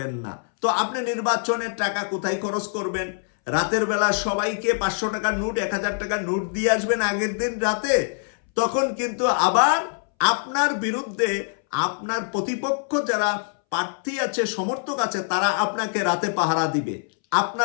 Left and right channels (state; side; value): silent; right; 62 dB below the other